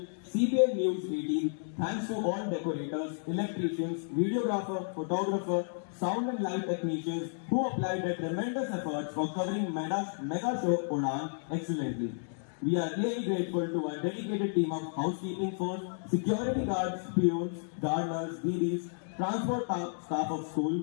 CBN News 18, thanks to all decorators, electricians, videographer, photographer, sound and light technicians who applied their tremendous efforts for covering mega show Udan excellently. We are really grateful to our dedicated team of housekeeping force, security guards, peons, gardeners, DDs, transport staff of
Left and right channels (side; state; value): right; silent; digital silence